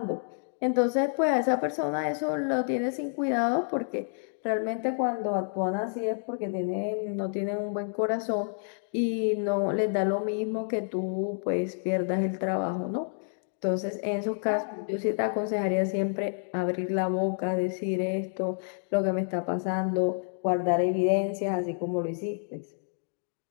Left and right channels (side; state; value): right; silent; digital silence